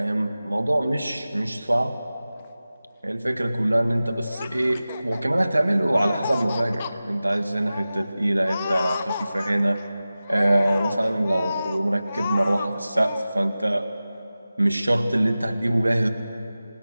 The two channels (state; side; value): inverted; both; correlation -0.95